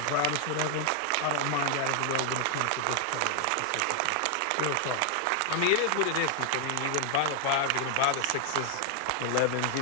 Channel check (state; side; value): different; both; correlation 0.00